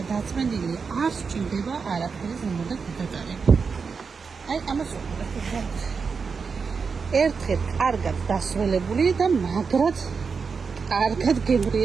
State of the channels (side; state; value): left; quieter; 5.3 dB